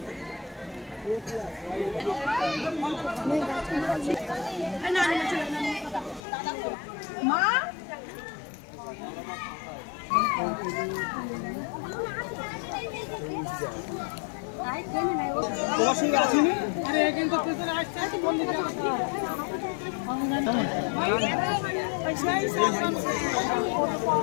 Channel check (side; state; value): right; drops out; at 6.2 s